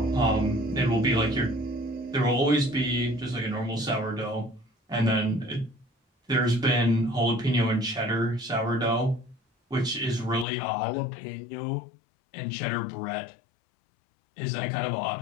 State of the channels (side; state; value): right; drops out; at 10.5 s